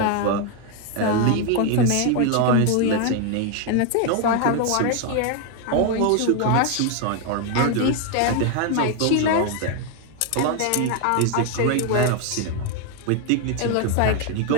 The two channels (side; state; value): both; different; correlation 0.01